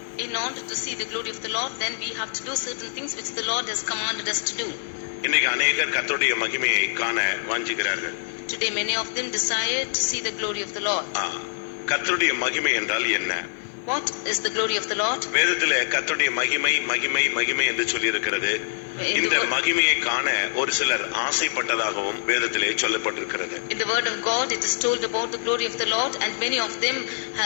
In order to see the glory of the Lord, then we have to do certain things which the Lord has commanded us to do. இன்னைக்கு அநேகர் கர்த்தருடைய மகிமையை காண வாஞ்சிக்கிறார்கள். Today many of them desire to see the glory of the Lord. கர்த்தருடைய மகிமை என்றால் என்ன? What is the glory of the Lord? வேதத்திலே கர்த்தருடைய மகிமை மகிமை மகிமை என்று சொல்லி இருக்கிறது. இந்த மகிமையை காண ஒரு சிலர் ஆசைப்பட்டதாகவும் வேதத்திலே சொல்லப்பட்டிருக்கிறது. In the word of God it is told about the glory of the Lord, and many of them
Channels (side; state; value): right; silent; digital silence